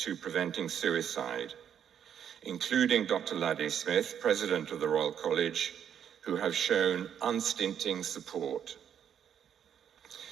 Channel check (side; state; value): left; quieter; 8.7 dB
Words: preventing suicide, including Dr. Laddy Smith, President of the Royal College, who have shown unstinting support.